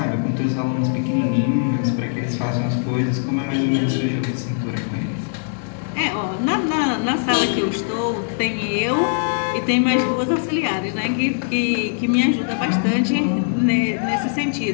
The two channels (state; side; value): silent; right; digital silence